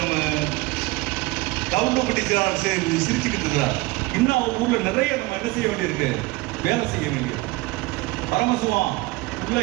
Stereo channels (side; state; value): left; quieter; 22.1 dB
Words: நம்ம கவுண்டப்பட்டி செயலாளர் சிரிச்சுக்கிட்டு இருக்கிறார். இன்னும் அவங்க ஊர்ல நிறைய நம்ம என்ன செய்ய வேண்டியிருக்கு? வேலை செய்ய வேண்டியிருக்கு. பரமசிவம் உள்ள